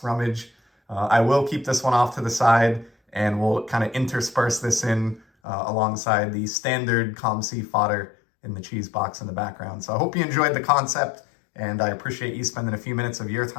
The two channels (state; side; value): drops out; right; at 5.2 s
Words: rummage. I will keep this one off to the side, and we'll kind of intersperse this in alongside the standard COMC fodder in the cheese box in the background. So I hope you enjoyed the concept, and I appreciate you spending a few minutes of your